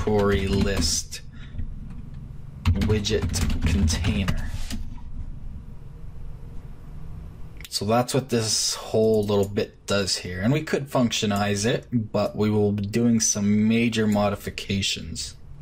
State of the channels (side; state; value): both; identical; correlation 1.00